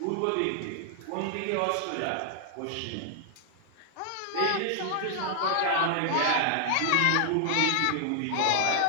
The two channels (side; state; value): both; different; correlation 0.00